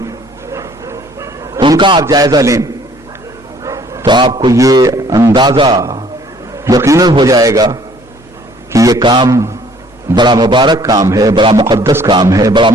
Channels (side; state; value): both; normal; correlation 0.58